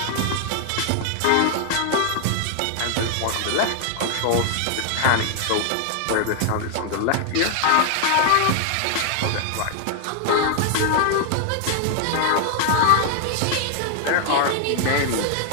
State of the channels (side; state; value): both; different; correlation 0.00